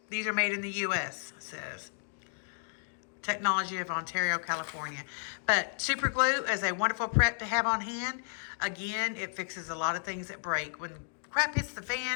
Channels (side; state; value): right; silent; digital silence